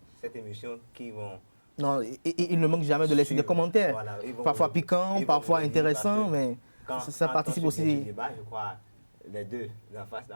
cette émission qui vont... Non, il ne manque jamais de laisser des commentaires. Voilà, parfois piquants, parfois intéressants, mais ça participe aussi. Débat, je crois, les deux en face,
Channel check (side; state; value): both; inverted; correlation -1.00